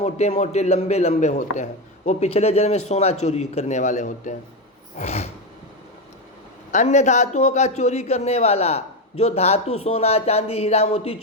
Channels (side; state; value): both; normal; correlation 0.11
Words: मोटे लंबे लंबे होते हैं, वो पिछले जन्म में सोना चोरी करने वाले होते हैं। अन्य धातुओं का चोरी करने वाला, जो धातु सोना चांदी हीरा मोती